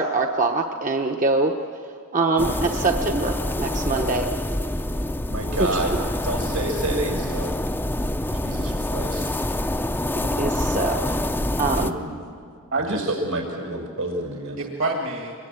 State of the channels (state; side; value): normal; both; correlation 0.37